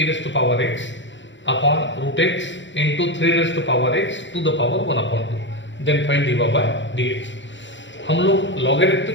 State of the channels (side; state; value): right; late; 0.54 ms